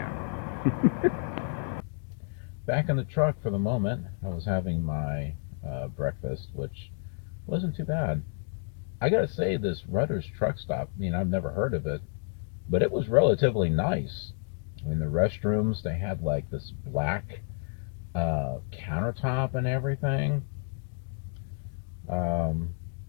Back in the truck for the moment. I was having my breakfast, which wasn't too bad. I gotta say, this Rutter's truck stop, I mean, I've never heard of it, but it was relatively nice. I mean, the restrooms, they had like this black countertop and everything.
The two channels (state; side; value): silent; right; 58 dB below the other